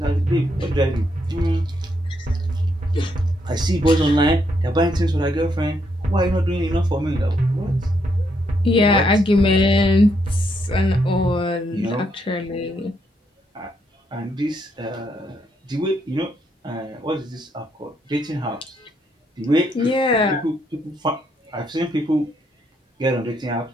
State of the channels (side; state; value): both; normal; correlation 0.76